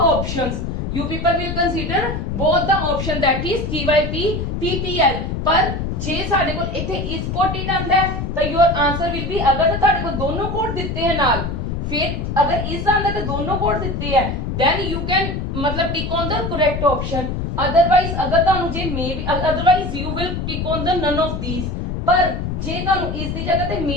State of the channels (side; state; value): left; noise; rumble, 3 dB below the sound